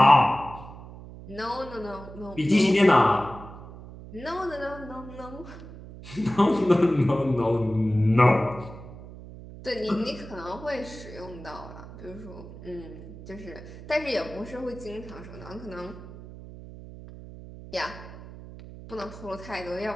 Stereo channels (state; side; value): noise; right; hum, 15 dB below the sound